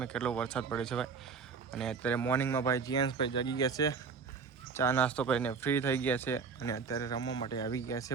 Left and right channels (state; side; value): quieter; left; 5.4 dB